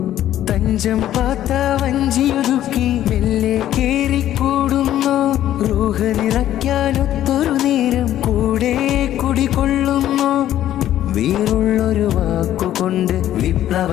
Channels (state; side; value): quieter; right; 12.3 dB